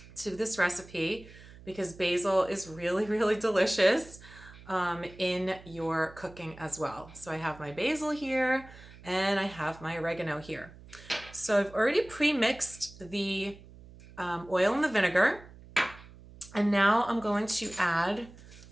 to this recipe because basil is really, really delicious in your cooking as well. So I have my basil here and I have my oregano here. So I've already pre-mixed the oil and the vinegar, and now I'm going to add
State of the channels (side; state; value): right; noise; hum, 20 dB below the sound